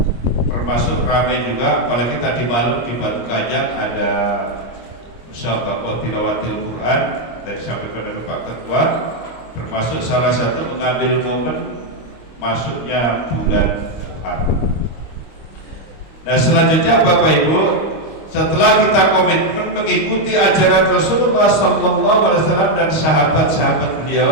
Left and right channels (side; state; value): right; late; 26 ms